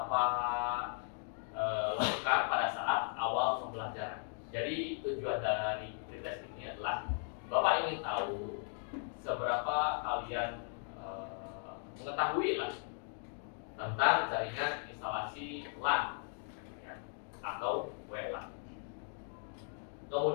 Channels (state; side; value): silent; right; 53 dB below the other